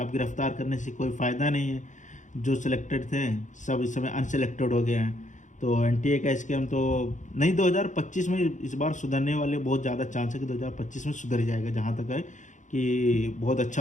अब गिरफ्तार करने से कोई फ़ायदा नहीं है, जो सिलेक्टेड थे सब इस समय अनसिलेक्टेड हो गए हैं। तो एनटीए का स्कैम तो नहीं, 2025 में इस बार सुधरने वाले बहुत ज़्यादा चांस है कि 2025 में सुधर जाएगा। जहाँ तक है कि बहुत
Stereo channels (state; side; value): late; right; 0.36 ms